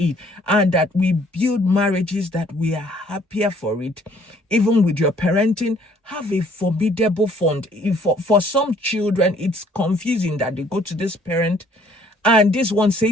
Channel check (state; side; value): normal; both; correlation 0.60